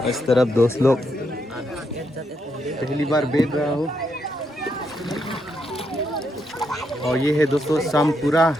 इस तरफ दोस्त लोग पहली बार बैठ रहा हूँ। और ये है दोस्तों सामपुरा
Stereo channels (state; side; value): normal; both; correlation 0.79